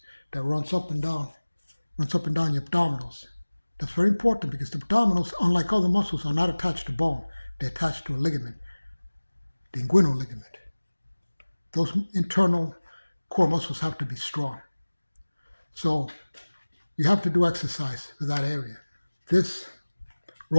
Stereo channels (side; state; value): both; inverted; correlation -1.00